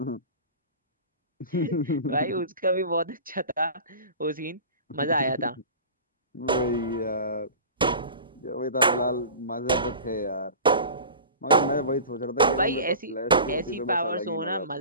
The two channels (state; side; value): inverted; both; correlation -0.36